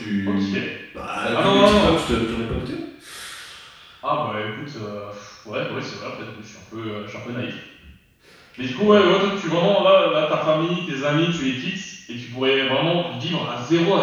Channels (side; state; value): both; identical; correlation 1.00